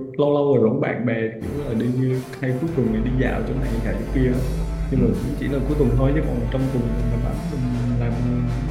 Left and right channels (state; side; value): identical; both; correlation 1.00